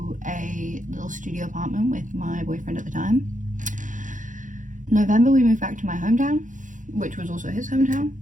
a little studio apartment with my boyfriend at the time. November, we moved back to my hometown, which was also his hometown.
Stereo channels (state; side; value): late; left; 0.37 ms